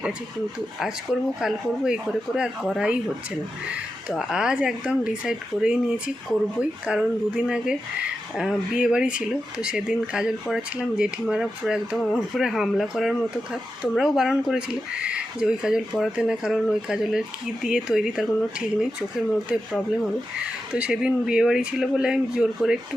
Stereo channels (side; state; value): both; normal; correlation 0.89